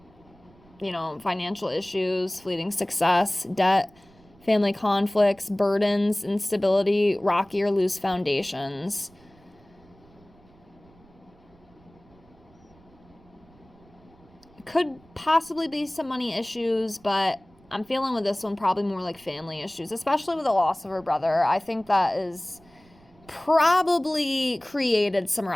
financial issues, fleeting success, debt, family conflicts, burdens, instability, rocky or loose foundations. Could possibly be some money issues, but I'm feeling with this one probably more like family issues, especially with the loss of her brother. I think that is probably created some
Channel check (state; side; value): noise; right; rumble, 28 dB below the sound